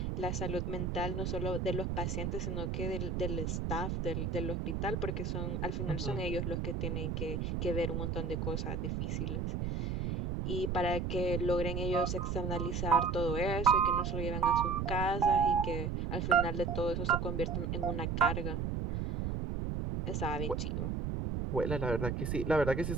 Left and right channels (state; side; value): noise; right; rumble, 1 dB below the sound